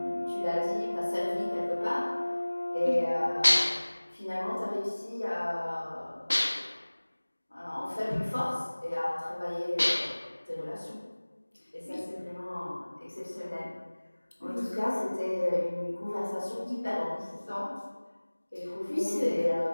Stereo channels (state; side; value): inverted; both; correlation -1.00